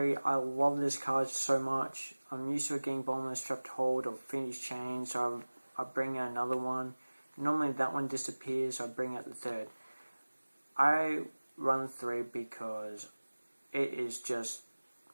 I love this card so much. I'm used to it getting Bottomless Trapped Hold or Finished Chain, so I bring out another one. Normally that one disappears, so I bring out the third. I run 3 because it is just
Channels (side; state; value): both; inverted; correlation -1.00